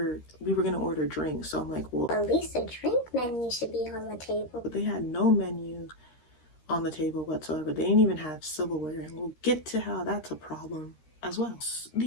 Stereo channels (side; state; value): right; late; 13 ms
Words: going to order drinks. So I'm like, well, at least a drink menu should be on the table. But they had no menu on the table whatsoever. They didn't even have silverware, and we'll get to how that's a problem as well.